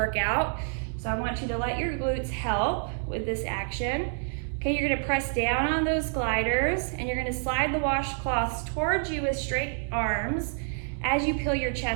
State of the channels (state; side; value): silent; left; 59 dB below the other